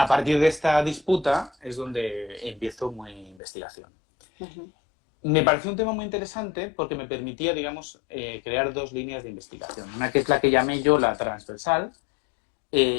partir de esta disputa es donde empiezo mi investigación. Me pareció un tema muy interesante porque me permitía, digamos, crear dos líneas de investigación. Una que es la que llamé yo la transversal,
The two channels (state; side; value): drops out; right; at 3.4 s